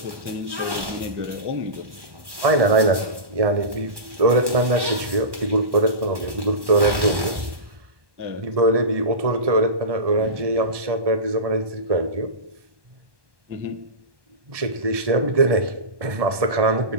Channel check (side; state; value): left; late; 1.1 ms